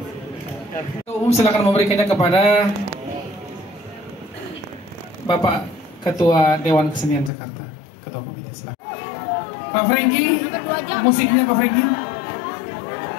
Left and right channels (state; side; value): drops out; right; at 7.3 s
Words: Umum silakan memberikannya kepada Bapak Ketua Dewan Kesenian Jakarta, Ketua Komite. Silakan. Pak Franky, musiknya Pak Franky.